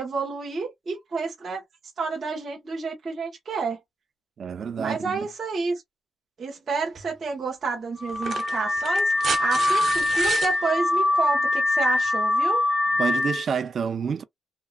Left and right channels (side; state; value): both; normal; correlation 0.87